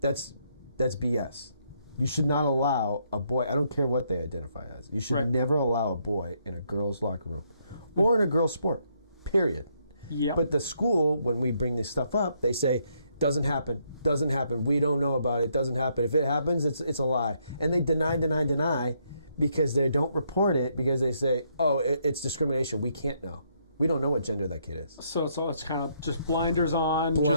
BS. You should not allow a boy, I don't care what they identify as, you should never allow a boy in a girl's locker room or in a girl's sport, period. Yep. But the school, when we bring this stuff up, they say, doesn't happen. We don't know about it. Doesn't happen. If it happens, it's a lie. And they deny because they don't report it because they say, oh, it's discrimination. We can't know. We don't know what gender that kid is. So it's kind of just blinders on.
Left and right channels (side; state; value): both; inverted; correlation -0.73